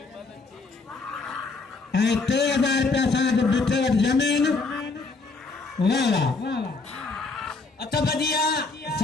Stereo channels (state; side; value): quieter; right; 3.9 dB